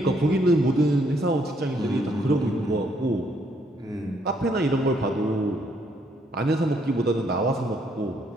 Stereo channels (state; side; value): normal; both; correlation 0.71